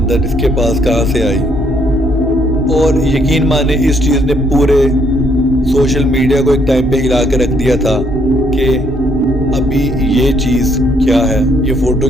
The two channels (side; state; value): both; normal; correlation 0.69